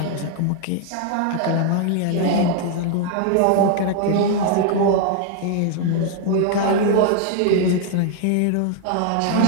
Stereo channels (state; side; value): different; both; correlation 0.00